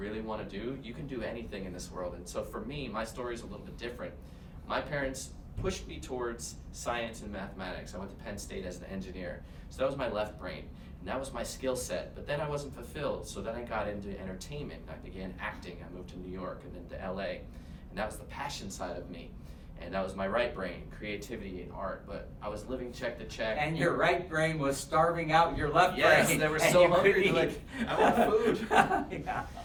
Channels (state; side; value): identical; both; correlation 1.00